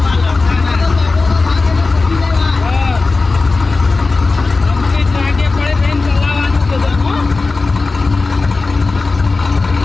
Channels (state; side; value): quieter; right; 3.8 dB